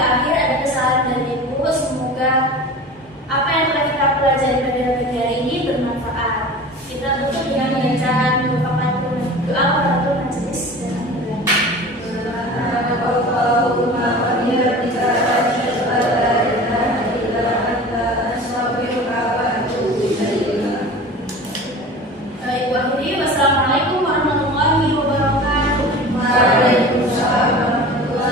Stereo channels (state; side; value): normal; both; correlation 0.37